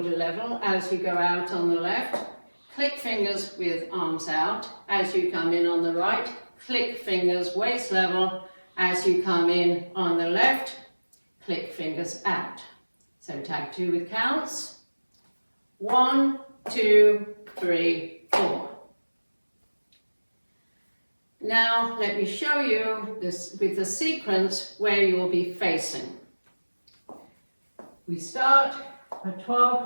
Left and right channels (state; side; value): inverted; both; correlation -1.00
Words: level. As you go out on the left, click fingers with arms out. As you come in on the right, click fingers waist level. As you come in on the left, click fingers out. So tag 2 with counts. 1, 2, 3, 4. Now let me show you this with the sequence where you will be facing. We start at 12